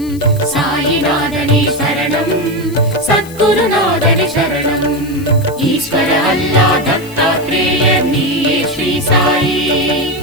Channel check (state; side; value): noise; left; hiss, 19 dB below the sound